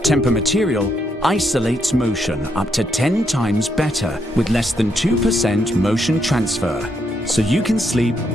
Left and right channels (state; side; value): normal; both; correlation 0.77